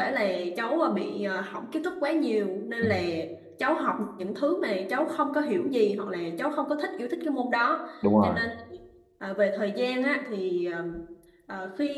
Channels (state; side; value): identical; both; correlation 1.00